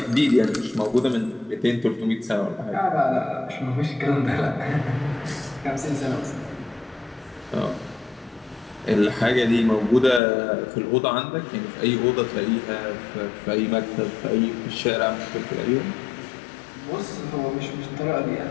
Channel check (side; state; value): right; drops out; at 10.2 s